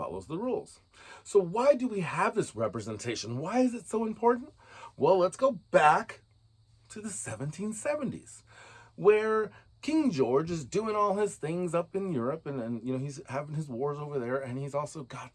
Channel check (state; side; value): identical; both; correlation 1.00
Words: the rules. So why do we have this representation? Why is it so important? Well, let's go back to the 1770s, where King George is doing all his things up in Europe, and he's having his wars over there, and he's also got